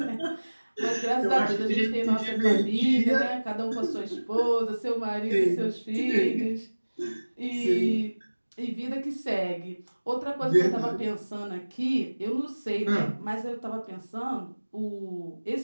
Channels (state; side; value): inverted; both; correlation -1.00